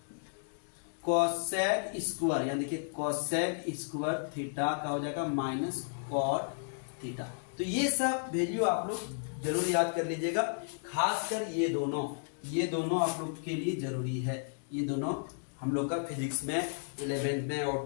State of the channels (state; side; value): silent; right; digital silence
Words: कोसेक स्क्वायर, यानी देखिए कोसेक स्क्वायर थीटा का हो जाएगा -cot थीटा। तो ये सब वैल्यू आप लोग जरूर याद कर लीजिएगा, खासकर ये दोनों आप लोग के लिए जरूरी है। ये दोनों हम लोग का फिजिक्स में 11th में